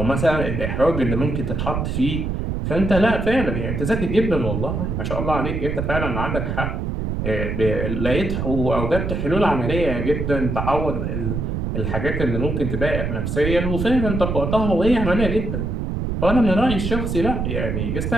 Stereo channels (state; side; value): noise; right; rumble, 2 dB below the sound